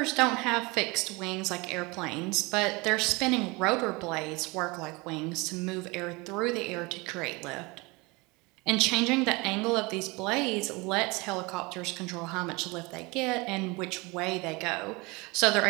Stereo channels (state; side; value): quieter; left; 25.6 dB